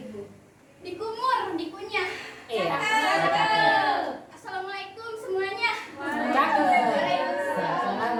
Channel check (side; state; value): both; identical; correlation 1.00